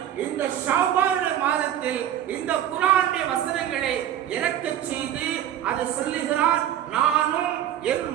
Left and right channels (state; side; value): quieter; left; 11.1 dB